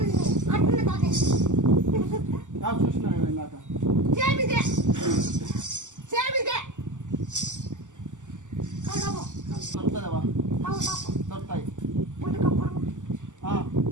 చూసినా ఇందాక దొరుకుతుందేవా? దొరుకుతాయి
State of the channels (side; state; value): left; late; 0.86 ms